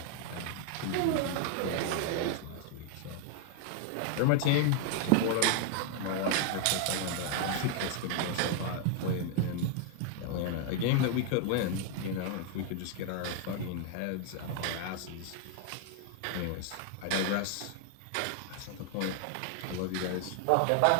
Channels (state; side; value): different; both; correlation 0.00